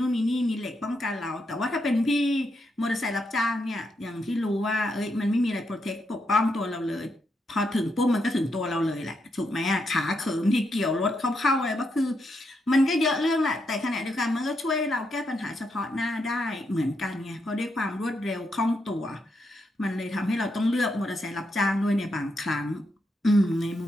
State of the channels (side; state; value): both; normal; correlation 0.81